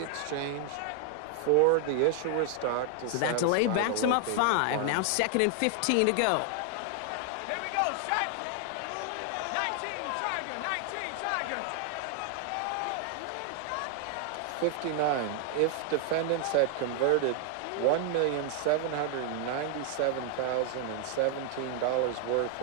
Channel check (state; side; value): different; both; correlation 0.00